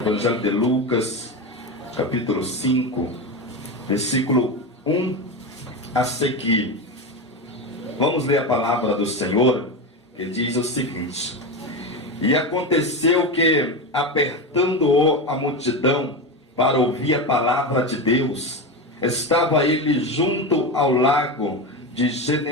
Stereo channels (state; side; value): normal; both; correlation 0.19